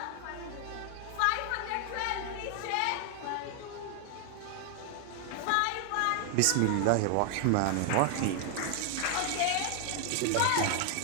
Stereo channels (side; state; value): both; different; correlation 0.00